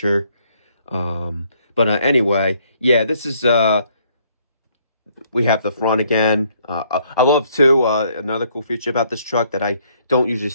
But anyway, yeah, this is we have the front again. I love too another cool feature about this truck that I don't usually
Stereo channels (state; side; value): inverted; both; correlation -0.67